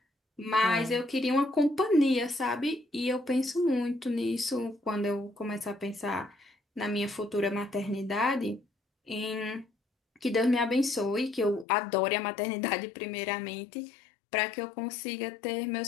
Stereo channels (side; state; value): right; drops out; at 11.7 s